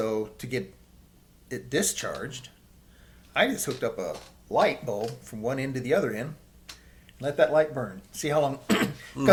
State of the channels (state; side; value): identical; both; correlation 1.00